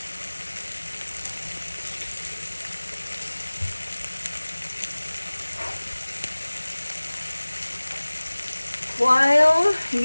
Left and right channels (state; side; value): inverted; both; correlation -1.00